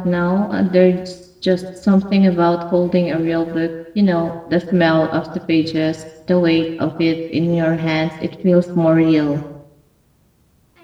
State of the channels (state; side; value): identical; both; correlation 1.00